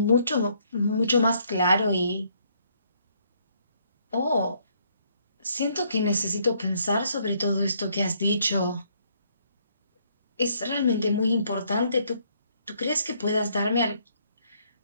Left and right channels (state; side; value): inverted; both; correlation -0.68